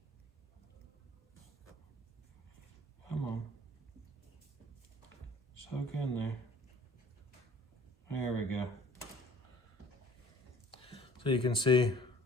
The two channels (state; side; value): normal; both; correlation 0.53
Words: Come on. Soak in there. There we go. So you can see